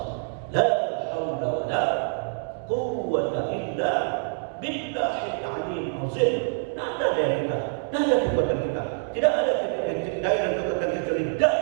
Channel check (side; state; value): left; silent; 61 dB below the other